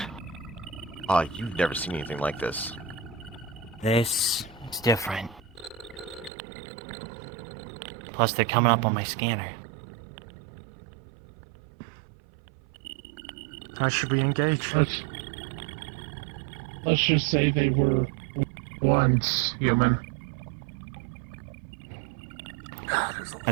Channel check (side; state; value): left; drops out; at 6.3 s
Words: You've never seen anything like this. This is different. Plus, they're coming up on my scanner. How should we engage? Let's just say they were once human. I